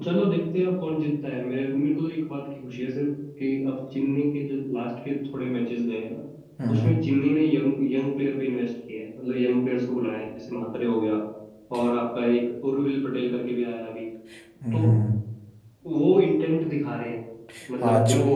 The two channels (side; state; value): both; identical; correlation 1.00